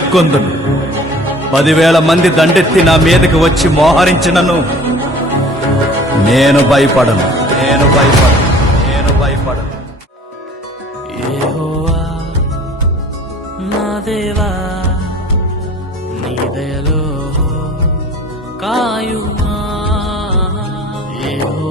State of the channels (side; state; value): both; normal; correlation 0.48